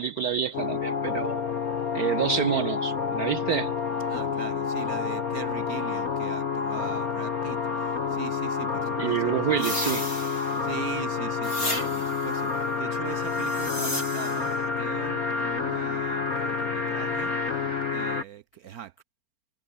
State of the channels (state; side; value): late; right; 4.4 ms